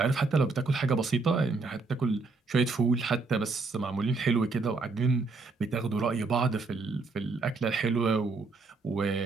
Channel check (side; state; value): left; quieter; 3.9 dB